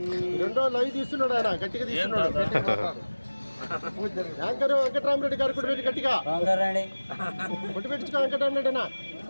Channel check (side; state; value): both; inverted; correlation -1.00